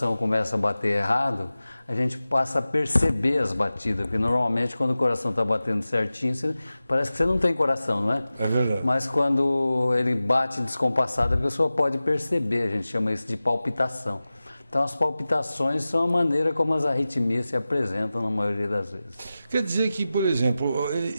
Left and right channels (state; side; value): inverted; both; correlation -0.96